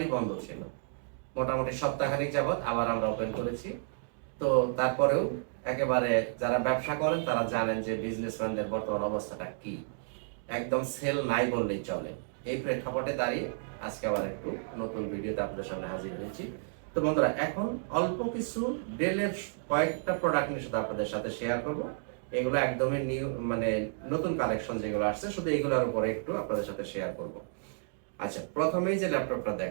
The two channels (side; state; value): left; silent; digital silence